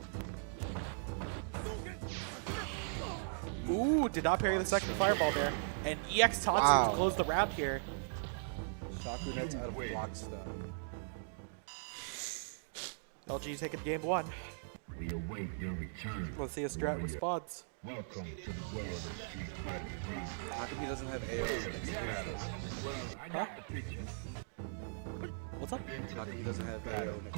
Ooh, did not parry the Block second stun. fireball there. And EX Tatsu Wow. to close the round here. Shaku nets out of block stun. LG taking game 1. Let's see if Strat responds. How come he doesn't have AO next to his name? Huh? What's up? How come he doesn't have AO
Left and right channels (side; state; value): left; silent; digital silence